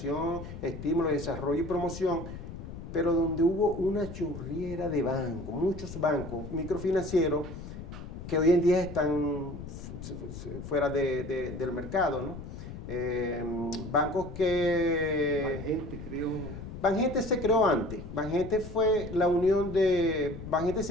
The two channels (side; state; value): left; noise; rumble, 10 dB below the sound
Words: estímulo, desarrollo y promoción, pero donde hubo una chorriera de bancos, muchos bancos microfinancieros que hoy en día están fuera del mercado, ¿no? Bancos que... Banjente, creo. Banjente se creó antes. Banjente fue la unión de... Banjente